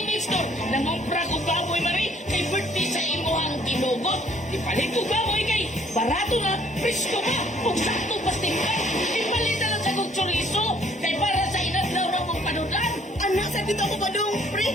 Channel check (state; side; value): normal; both; correlation 0.61